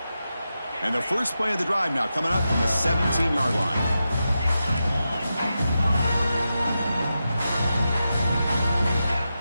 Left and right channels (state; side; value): inverted; both; correlation -0.90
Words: And the first play of the drive now coming up from the 17-yard line.